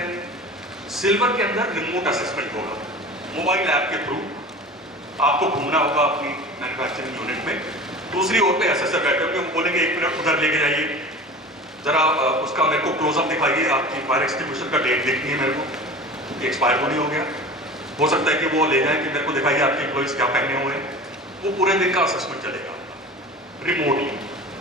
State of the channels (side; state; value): both; normal; correlation 0.37